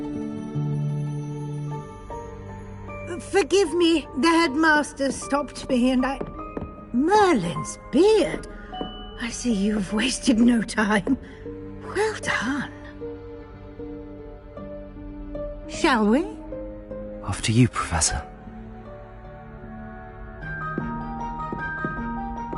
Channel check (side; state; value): both; identical; correlation 1.00